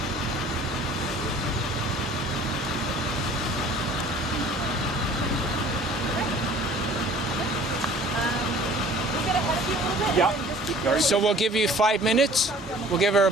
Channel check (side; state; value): both; normal; correlation 0.49